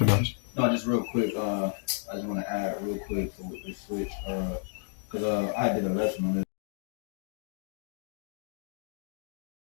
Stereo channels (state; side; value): silent; right; digital silence